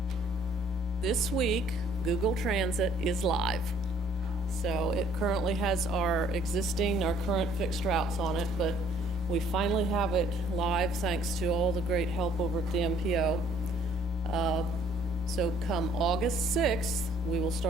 this week, Google Transit is live. So it currently has our current fixed routes on it, but we finally have it live thanks to all the great help over at the MPO. So come August 6th, we will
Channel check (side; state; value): both; normal; correlation 0.59